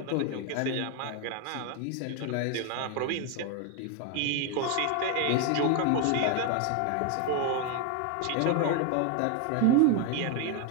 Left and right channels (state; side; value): different; both; correlation 0.01